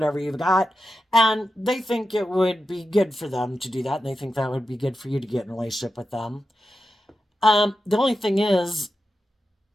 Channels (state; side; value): normal; both; correlation 0.91